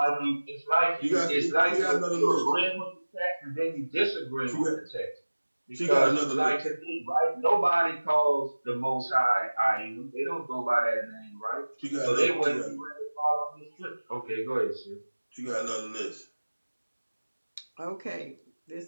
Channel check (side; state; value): both; inverted; correlation -1.00